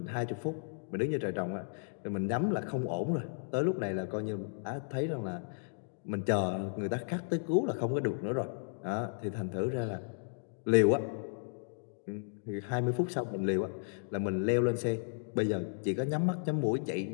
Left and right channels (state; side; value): silent; right; digital silence